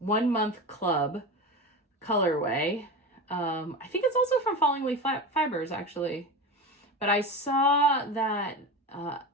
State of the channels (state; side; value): normal; both; correlation 0.26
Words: month club colorway. I think it's also from Falling Leaf Fibers, actually. But I saw that